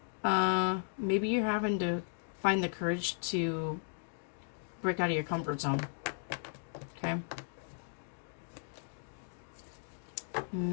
Maybe you're having to find the courage to break out of your comfort zone. Okay.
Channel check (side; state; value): right; silent; digital silence